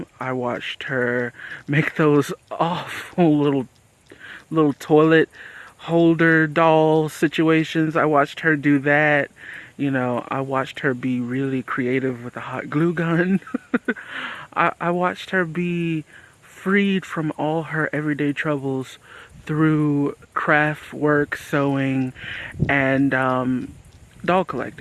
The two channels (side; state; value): both; identical; correlation 1.00